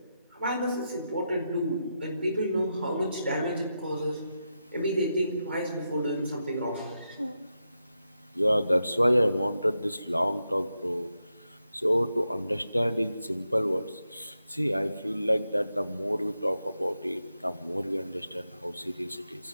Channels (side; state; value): both; inverted; correlation -0.87